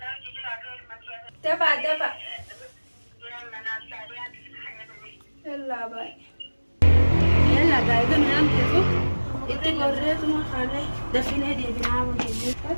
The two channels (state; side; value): inverted; both; correlation -1.00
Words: لا يجي على Dafaa dafa يلا ناساليات. yallaa baay'ee. يلا قاعدة ننام كيفك؟ انت قريت ما خالي دفيني دي بنعم وجيبي